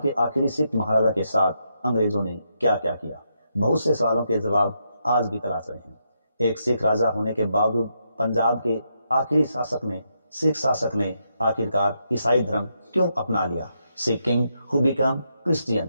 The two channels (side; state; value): both; inverted; correlation -0.80